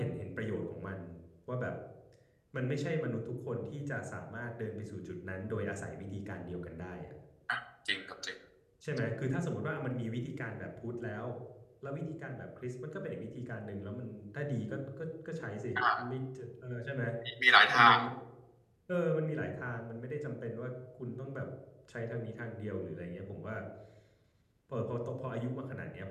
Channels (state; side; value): identical; both; correlation 1.00